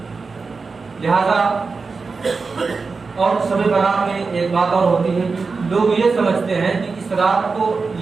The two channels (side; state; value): left; quieter; 4.5 dB